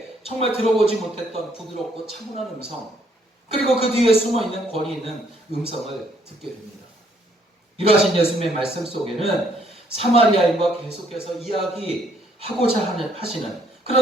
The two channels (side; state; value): both; normal; correlation 0.68